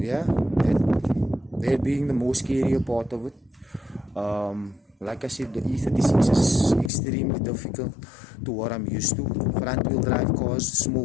that being the most scarier part of it. Like I said, the E36 is extremely difficult to what I'm used to. Front wheel drive cars,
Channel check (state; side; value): drops out; right; at 6.9 s